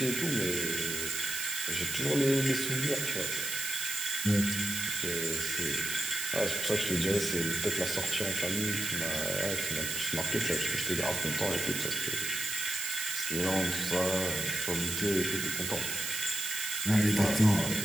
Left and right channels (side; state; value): right; noise; hiss, 3 dB below the sound